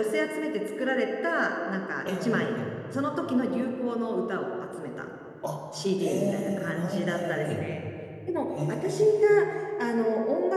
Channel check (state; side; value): identical; both; correlation 1.00